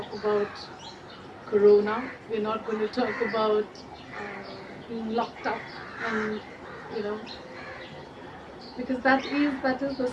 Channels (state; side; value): identical; both; correlation 1.00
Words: about Corona. We're not going to talk about being locked up, and you know, because that is the